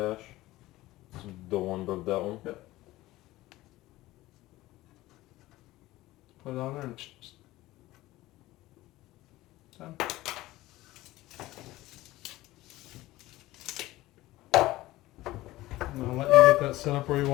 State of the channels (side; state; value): right; quieter; 17.5 dB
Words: It's the one above that one. Yep. Put it on there and done. Now let you get that set up where you